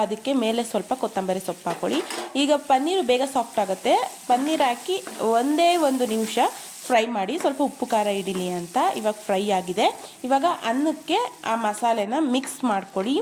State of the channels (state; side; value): identical; both; correlation 1.00